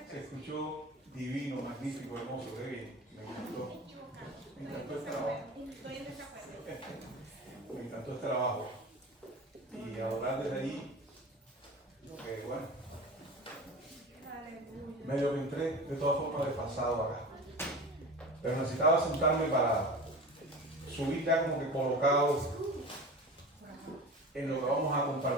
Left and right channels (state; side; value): normal; both; correlation 0.33